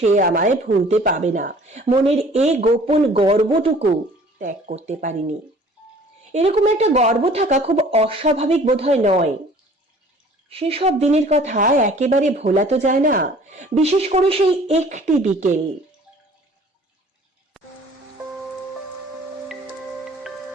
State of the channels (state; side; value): normal; both; correlation 0.51